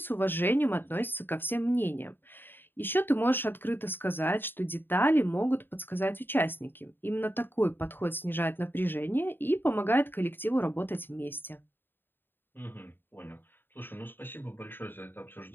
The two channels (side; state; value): right; late; 0.097 ms